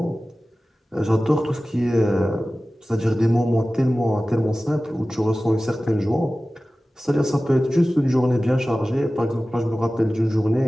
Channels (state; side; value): normal; both; correlation 0.96